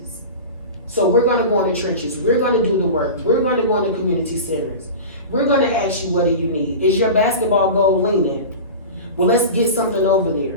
So we're gonna go in the trenches, we're gonna do the work, we're gonna go in the community centers. We're gonna ask you, what do you need? Is your basketball goal leaning? Well, let's get something over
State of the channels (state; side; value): inverted; both; correlation -0.30